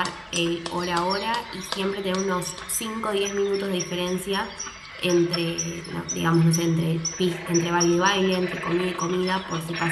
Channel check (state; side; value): identical; both; correlation 1.00